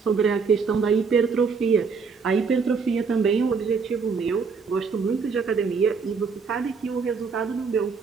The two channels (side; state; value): left; quieter; 5.3 dB